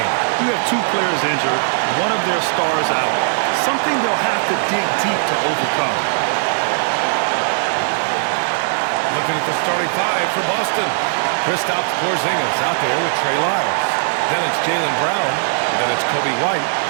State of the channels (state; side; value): silent; left; 60 dB below the other